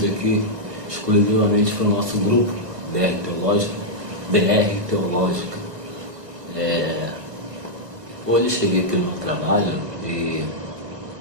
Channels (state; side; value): late; left; 1.4 ms